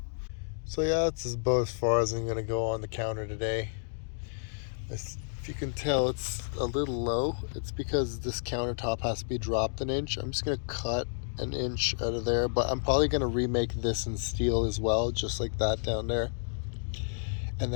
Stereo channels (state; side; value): silent; right; digital silence